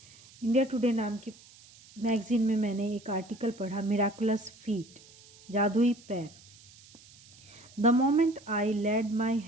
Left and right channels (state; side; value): noise; right; hiss, 24 dB below the sound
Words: टुडे नाम की मैगज़ीन में मैंने एक आर्टिकल पढ़ा, मिराकुलस फीट, जादुई पैर. The moment I laid my